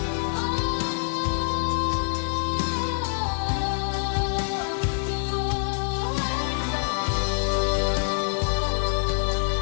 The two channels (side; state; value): right; silent; digital silence